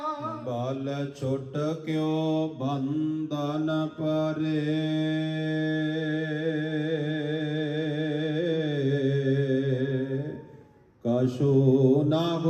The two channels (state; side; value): identical; both; correlation 1.00